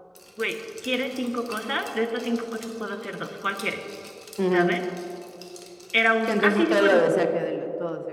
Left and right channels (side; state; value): both; identical; correlation 1.00